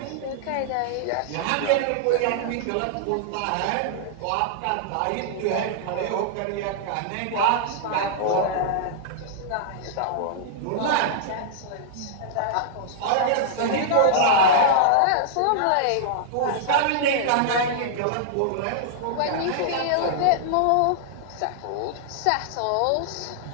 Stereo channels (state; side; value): different; both; correlation -0.01